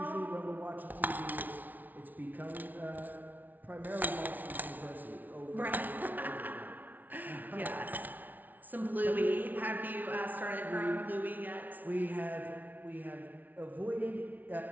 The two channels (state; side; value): late; left; 0.081 ms